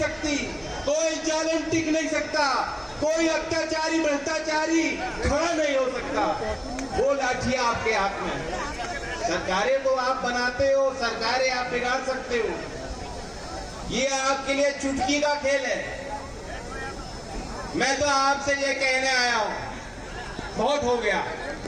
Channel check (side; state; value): both; identical; correlation 1.00